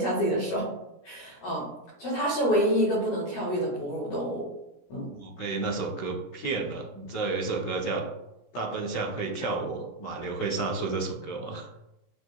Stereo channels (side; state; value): right; late; 17 ms